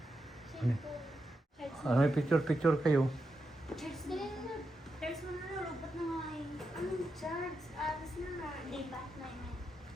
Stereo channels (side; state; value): both; normal; correlation 0.86